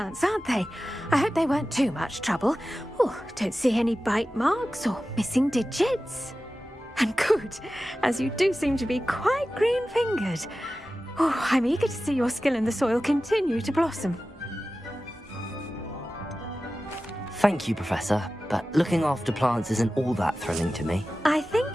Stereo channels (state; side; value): normal; both; correlation 0.95